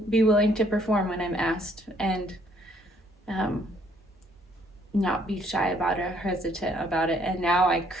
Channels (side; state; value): both; normal; correlation 0.65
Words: be willing to perform when I'm asked, and not be shy about it or hesitant about it. And now I